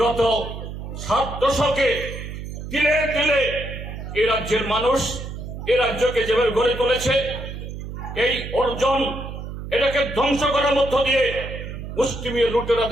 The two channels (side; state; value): right; noise; hum, 9 dB below the sound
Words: 7 দশকে তিলে তিলে এই রাজ্যের মানুষ এই রাজ্যকে যেভাবে গড়ে তুলেছে, এই অর্জন এটাকে ধ্বংস করার মধ্য দিয়ে মুষ্টিমেয়